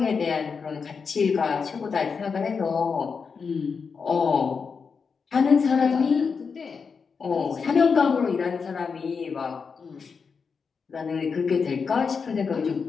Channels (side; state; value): right; quieter; 5.5 dB